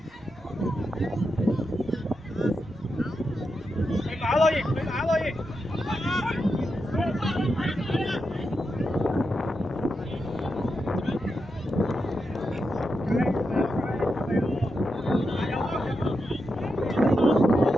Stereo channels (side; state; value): both; normal; correlation 0.86